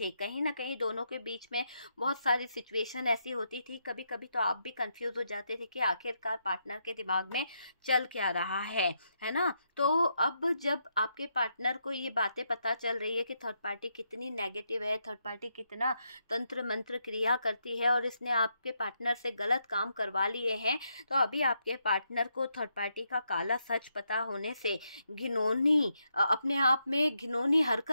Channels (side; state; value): both; inverted; correlation -0.80